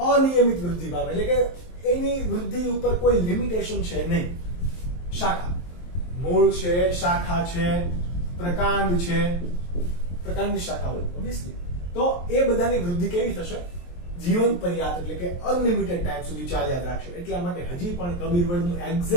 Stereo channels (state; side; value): late; right; 23 ms